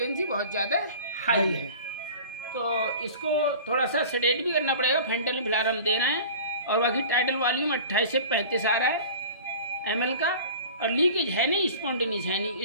बहुत ज़्यादा हाई हाई है। है। तो इसको थोड़ा सा सेडेट भी करना पड़ेगा, फेंटल फिलहाल हम दे रहे हैं। और बाकी टाइटल वॉल्यूम 28 से 35 आ रहा है ml का, और लीकेज है नहीं, स्पॉन्टेनियस है नहीं।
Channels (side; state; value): both; inverted; correlation -0.40